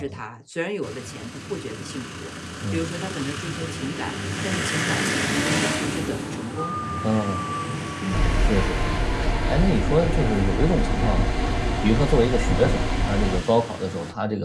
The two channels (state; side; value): identical; both; correlation 1.00